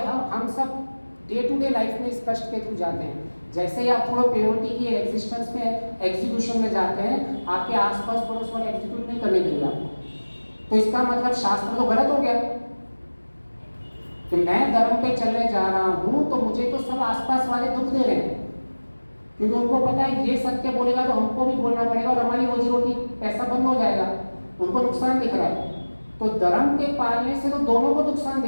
हम सब डे टू डे लाइफ में इस कष्ट के थ्रू जाते हैं। जैसे ही आप थोड़ा प्योरिटी की एग्जिस्टेंस में एग्जीक्यूशन में जाते हैं, आपके आसपास पड़ोस वाले एग्जीक्यूट नहीं करने देंगे आपको। तो इसका मतलब शास्त्र तो गलत हो गया कि मैं धर्म पे चलने जा रहा हूँ तो मुझे तो सब आसपास वाले दुख दे रहे हैं, क्योंकि उनको पता है ये सत्य बोलेगा तो हमको भी बोलना पड़ेगा और हमारी रोजी रोटी पैसा बंद हो जाएगा। उनको नुकसान दिख रहा है। तो धर्म के पालने से तो दोनों को नुकसान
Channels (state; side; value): inverted; both; correlation -1.00